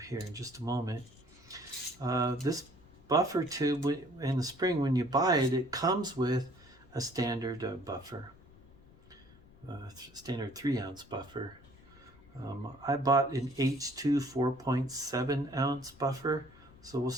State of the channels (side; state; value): left; noise; rumble, 24 dB below the sound